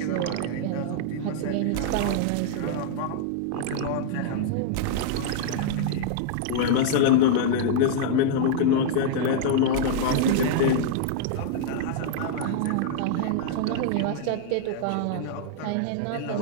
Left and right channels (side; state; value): both; different; correlation -0.01